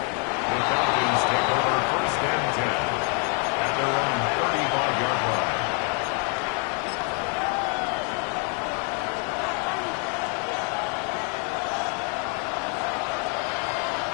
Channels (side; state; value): right; quieter; 38.8 dB